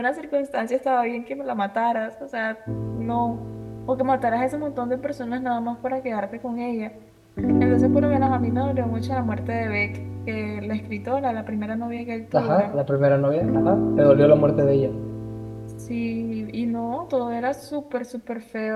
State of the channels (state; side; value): identical; both; correlation 1.00